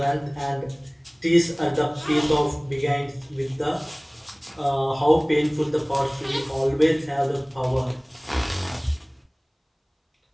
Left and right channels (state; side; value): identical; both; correlation 1.00